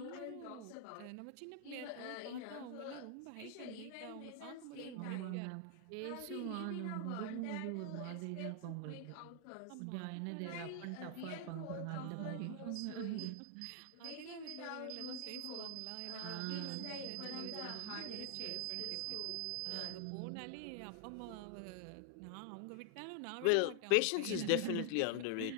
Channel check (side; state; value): both; different; correlation 0.00